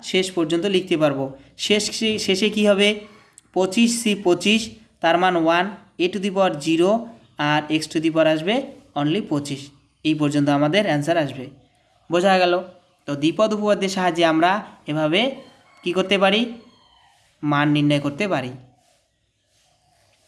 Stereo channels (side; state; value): both; identical; correlation 1.00